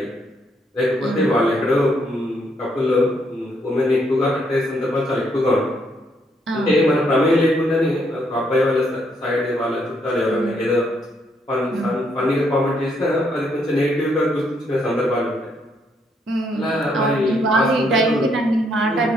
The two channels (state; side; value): normal; both; correlation 0.73